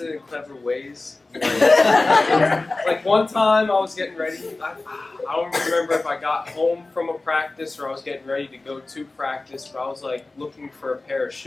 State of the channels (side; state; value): right; quieter; 3.2 dB